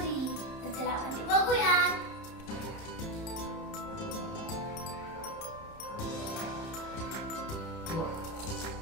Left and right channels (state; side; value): late; right; 30 ms